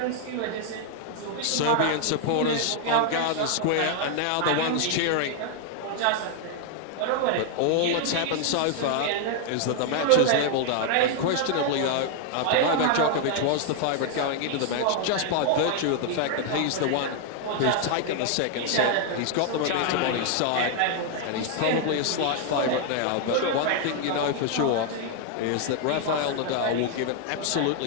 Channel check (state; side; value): different; both; correlation 0.00